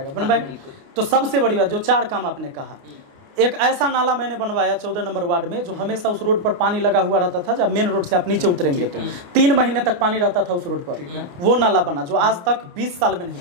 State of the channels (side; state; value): left; late; 29 ms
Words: तो सबसे बड़ी बात, जो 4 काम आपने कहा, एक ऐसा नाला मैंने बनवाया 14 नंबर वार्ड में, जो हमेशा उस रोड पर पानी लगा हुआ रहता था। जब मेन रोड से आप नीचे उतरेंगे तो 3 महीने तक पानी रहता था उस रोड पर। वो नाला बना जो आज तक 20 साल में नहीं